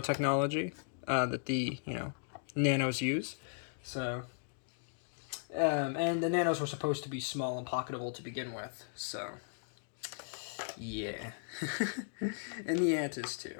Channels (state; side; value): silent; right; digital silence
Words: that the nanos use. So and the nanos were supposed to be small and pocketable to begin with. So yeah, and the ant is